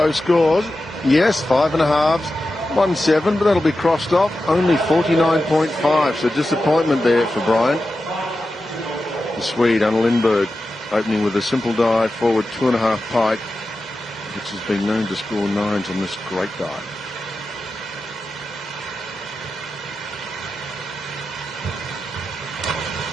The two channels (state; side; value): normal; both; correlation 0.92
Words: scores. Yes, 5.5. 1.7, but that'll be crossed off. Only 49.5, so disappointment there for Bryant. The Swede, Anna Lindberg, opening with a simple dive forward 2.5 pike, which has been known to score 9s on this great dive.